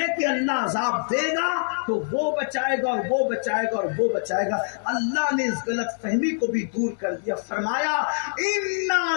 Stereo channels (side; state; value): right; silent; digital silence